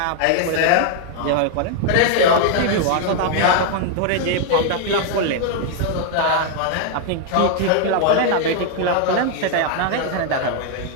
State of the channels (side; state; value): both; different; correlation 0.00